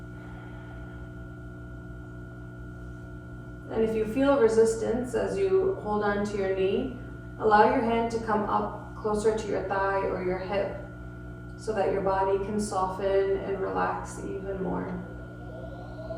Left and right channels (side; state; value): both; identical; correlation 1.00